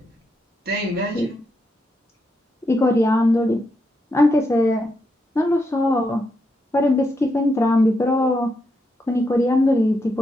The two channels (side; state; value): both; normal; correlation 0.82